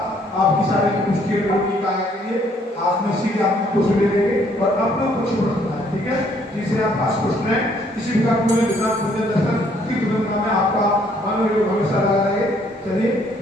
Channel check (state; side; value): normal; both; correlation 0.65